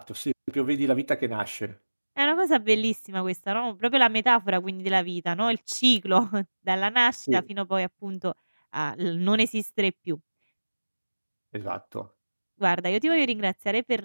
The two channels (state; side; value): inverted; both; correlation -1.00